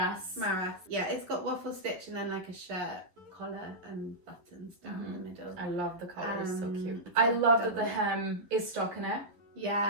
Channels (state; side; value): late; left; 11 ms